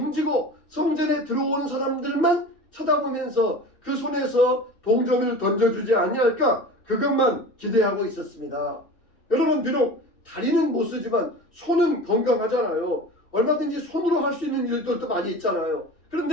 성전에 들어오는 사람들만 쳐다보면서 그 손에서 동전을 던져주지 아니할까 그것만 기대하고 있었습니다. 여러분, 비록 다리는 못 쓰지만 손은 건강하잖아요. 얼마든지 손으로 할 수 있는 일들도 많이 있잖아요.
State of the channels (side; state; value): right; late; 2.7 ms